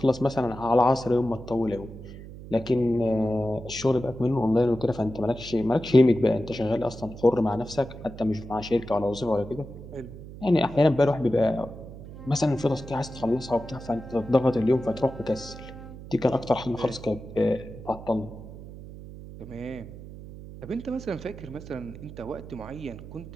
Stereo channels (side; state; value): right; noise; hum, 14 dB below the sound